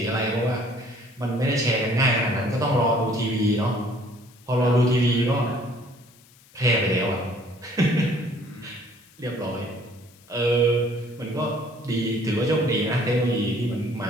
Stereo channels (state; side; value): noise; left; hiss, 27 dB below the sound